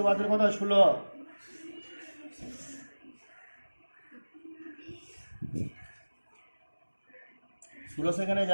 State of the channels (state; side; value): inverted; both; correlation -1.00